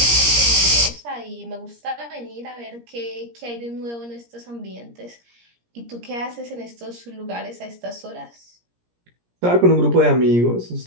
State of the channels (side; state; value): left; late; 17 ms